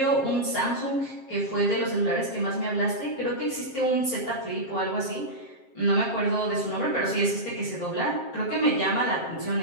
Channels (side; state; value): right; late; 7.5 ms